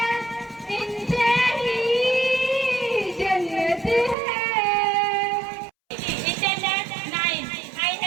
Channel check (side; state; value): left; drops out; at 4.2 s